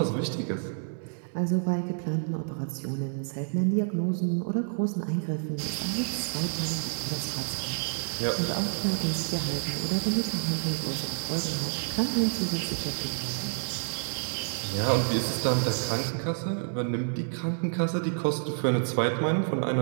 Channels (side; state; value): left; silent; digital silence